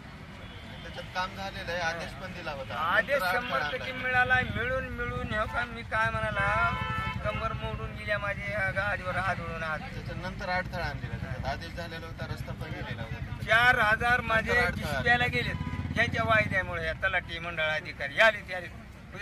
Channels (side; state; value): both; identical; correlation 1.00